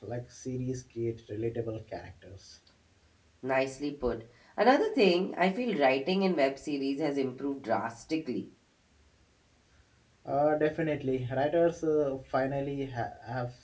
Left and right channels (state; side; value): identical; both; correlation 1.00